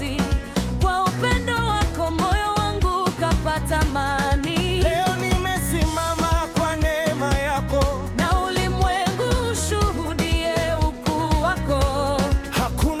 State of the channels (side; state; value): both; identical; correlation 1.00